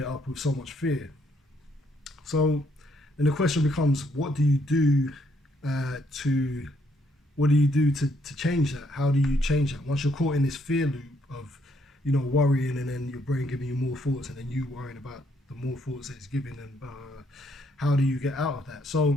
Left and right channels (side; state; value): both; normal; correlation 0.71